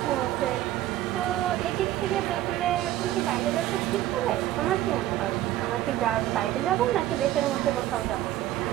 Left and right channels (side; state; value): left; quieter; 14.1 dB